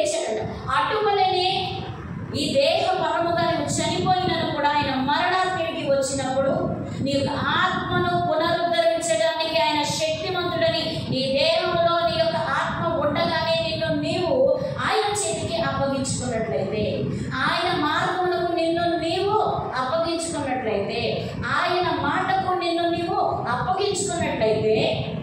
అటువలనే ఈ దేహ పరముగా నువ్వు చనిపోయినను కూడా ఆయన మరణానికి వచ్చినప్పుడు నీ యొక్క ఆత్మను పునరుద్ధరించడానికి ఆయన శక్తిమంతుడని, నీ దేహంలో నీ యొక్క ఆత్మ ఉండగానే నిన్ను నీవు ఆయన చేతికి అప్పగించుకున్నట్లయితే, ఆయన మార్గములకు నిన్ను నీవు అప్పగించుకున్నట్లయితే, ఆయన మాటకు నిన్ను నీవు అప్పగించుకున్నట్లయితే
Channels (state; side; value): identical; both; correlation 1.00